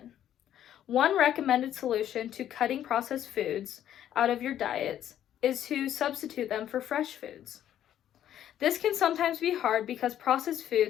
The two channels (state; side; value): quieter; right; 11.0 dB